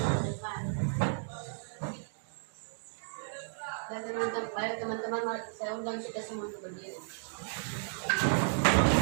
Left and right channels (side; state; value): left; silent; digital silence